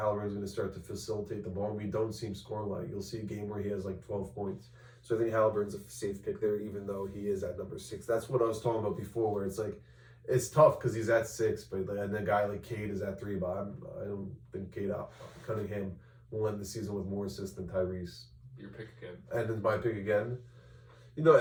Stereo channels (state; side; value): identical; both; correlation 1.00